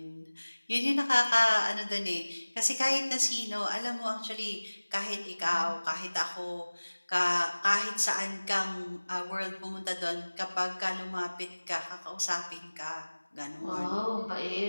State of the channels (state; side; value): inverted; both; correlation -1.00